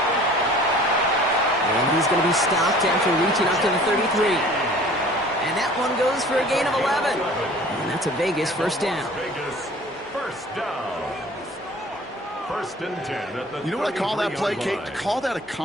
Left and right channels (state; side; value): normal; both; correlation 0.48